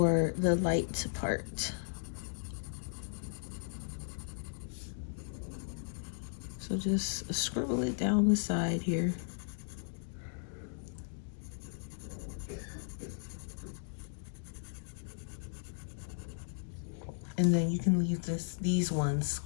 the light part. So just scribble it down the side here. And then you can leave these ones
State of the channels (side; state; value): right; silent; digital silence